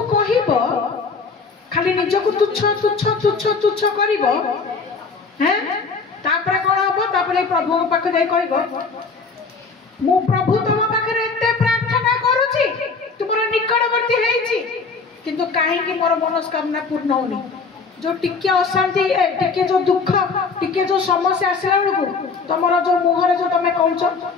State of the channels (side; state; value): right; quieter; 4.7 dB